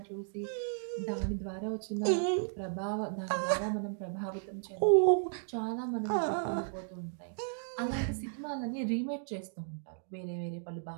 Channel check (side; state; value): left; silent; digital silence